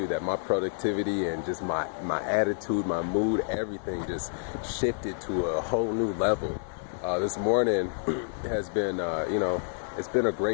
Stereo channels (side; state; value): right; silent; digital silence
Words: that my productivity and just my attitude, my mood, everything just shifted to a whole new level. This morning has been, it's been a